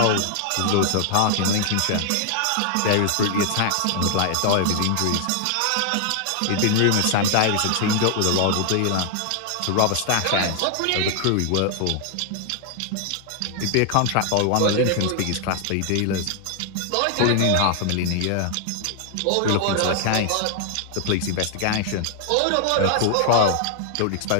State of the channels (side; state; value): both; different; correlation 0.00